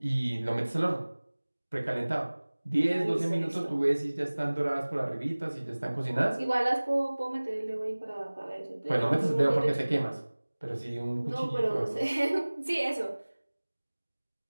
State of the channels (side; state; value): both; inverted; correlation -1.00